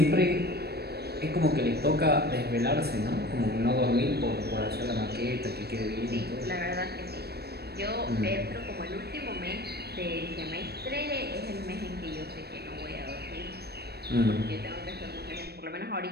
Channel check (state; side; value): late; left; 0.47 ms